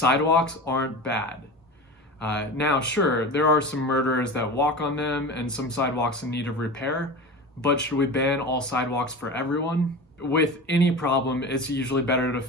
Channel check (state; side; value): normal; both; correlation 0.31